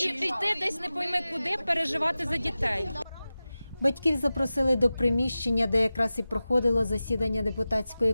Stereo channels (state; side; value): inverted; both; correlation -0.96